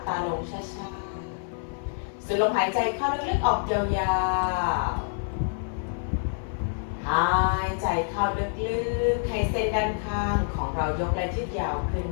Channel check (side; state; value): right; silent; 56 dB below the other